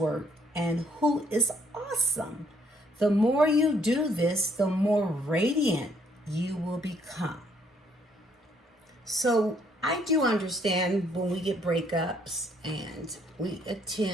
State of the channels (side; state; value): both; normal; correlation 0.67